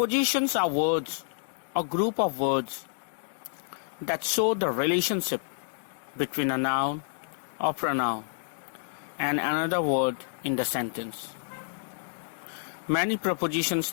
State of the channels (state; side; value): silent; right; digital silence